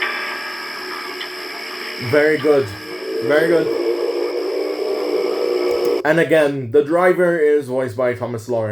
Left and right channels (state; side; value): identical; both; correlation 1.00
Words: Very good. Very good. And again, the driver is voiced by Thomas